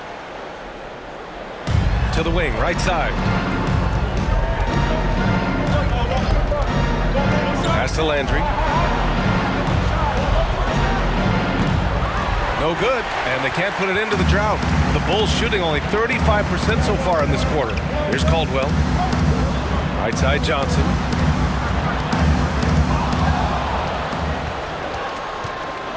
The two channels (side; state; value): both; identical; correlation 1.00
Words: To the wing, right side. Pass to Landry. No good, and they can't put it into the drought. The Bulls shooting only 35% so far in this quarter. Here's Caldwell. Right side, Johnson.